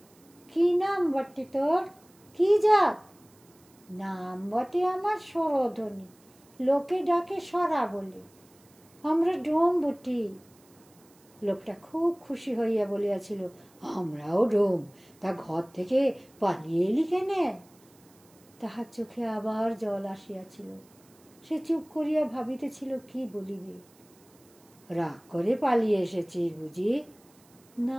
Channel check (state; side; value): noise; right; hiss, 29 dB below the sound